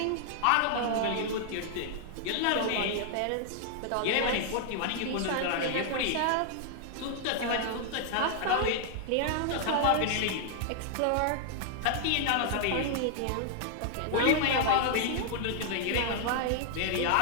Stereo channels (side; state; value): both; different; correlation 0.00